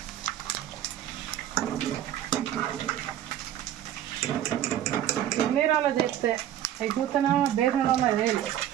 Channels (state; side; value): quieter; left; 11.5 dB